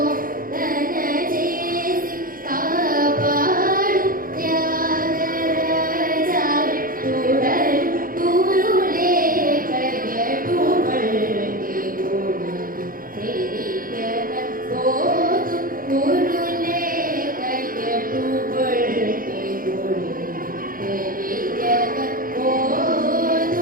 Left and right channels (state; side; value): late; left; 0.41 ms